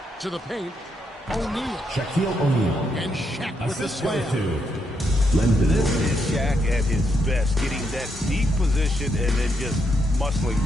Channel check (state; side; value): normal; both; correlation 0.78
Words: To the paint. O'Neal. Shaquille O'Neal. And Shaq with the Assist slam. to Lendon. This is Shaq at his best, getting that deep position and then just muscling